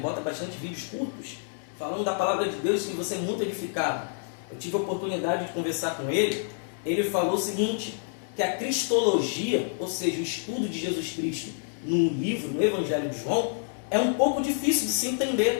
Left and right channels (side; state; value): right; silent; 59 dB below the other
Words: bastante vídeos curtos, falando da palavra de Deus, e você é muito edificado. Eu tive a oportunidade de conversar com ele. Ele falou o seguinte, que a cristologia, ou seja, o estudo de Jesus Cristo no livro, no Evangelho de João, é um pouco difícil de se